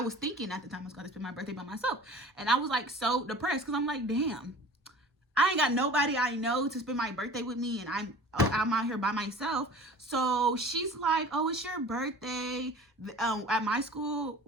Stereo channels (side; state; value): both; normal; correlation 0.42